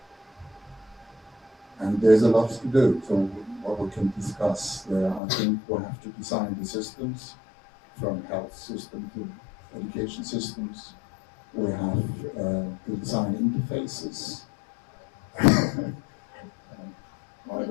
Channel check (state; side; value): drops out; right; at 5.2 s